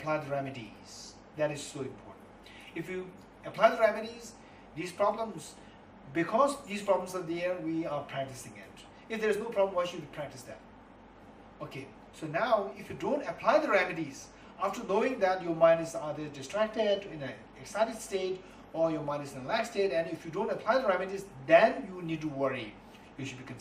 the remedies. That is so important. If you apply the remedies, these problems, because these problems are there, we are practicing it. If there is no problem, why should we practice that? Okay, so now if you don't apply the remedies, after knowing that your mind is either distracted, in an excited state, or your mind is in a relaxed state, and if you don't apply the remedies, then you need to worry. You should be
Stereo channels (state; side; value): identical; both; correlation 1.00